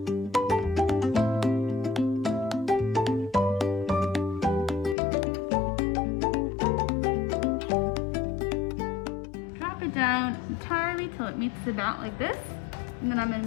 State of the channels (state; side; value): drops out; right; at 5.0 s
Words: Down entirely till it meets about like this, and then I'm going to